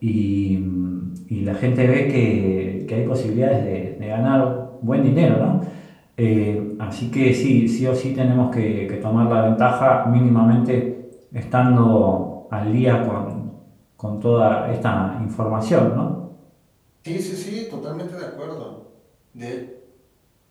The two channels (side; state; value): both; identical; correlation 1.00